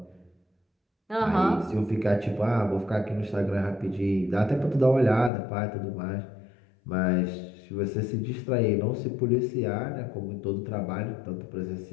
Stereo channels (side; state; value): right; drops out; at 5.3 s